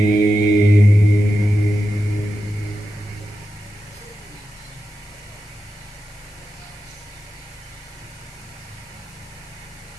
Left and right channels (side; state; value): left; noise; hiss, 25 dB below the sound